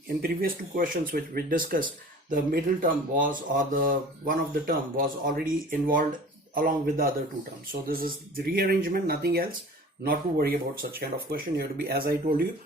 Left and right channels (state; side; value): normal; both; correlation 0.43